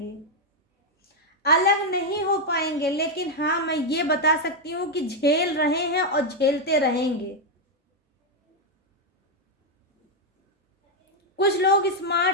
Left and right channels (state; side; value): normal; both; correlation 0.01